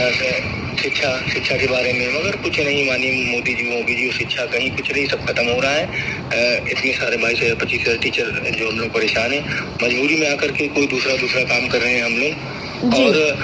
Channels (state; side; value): identical; both; correlation 1.00